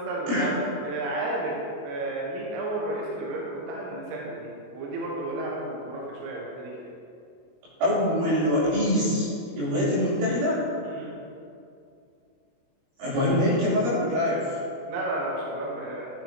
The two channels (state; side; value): late; left; 24 ms